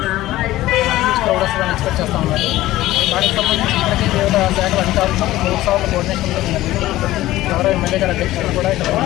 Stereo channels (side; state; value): right; quieter; 16.0 dB